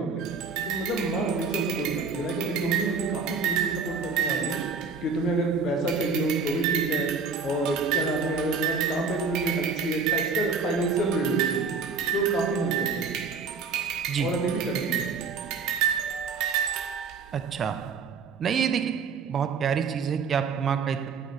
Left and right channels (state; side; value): quieter; left; 4.9 dB